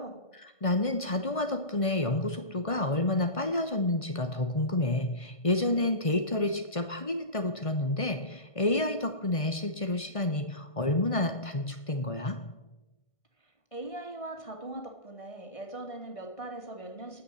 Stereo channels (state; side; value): late; right; 1.6 ms